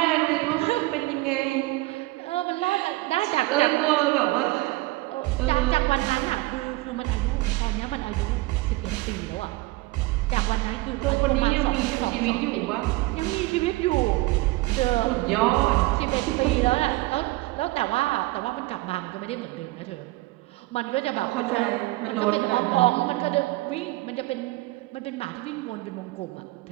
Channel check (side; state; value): left; quieter; 20.7 dB